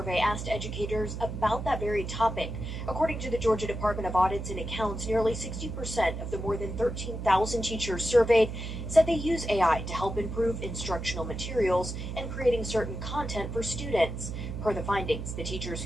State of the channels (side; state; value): right; noise; hum, 6 dB below the sound